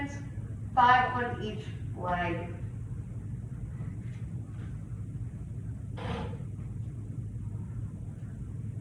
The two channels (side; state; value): both; identical; correlation 1.00